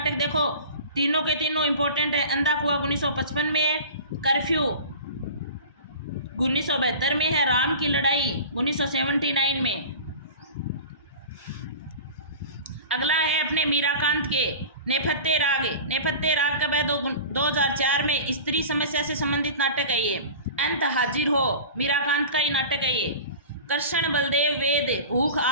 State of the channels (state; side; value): inverted; both; correlation -0.37